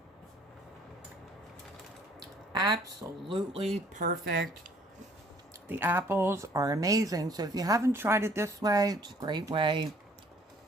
Absolutely perfect. The apples are amazing. So if you haven't tried it this way, it's a great way.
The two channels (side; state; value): both; normal; correlation 0.59